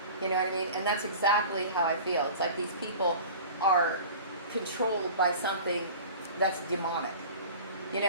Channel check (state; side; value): inverted; both; correlation -0.39